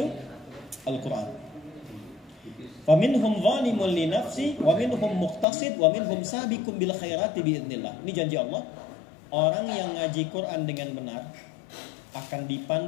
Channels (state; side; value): drops out; right; at 5.5 s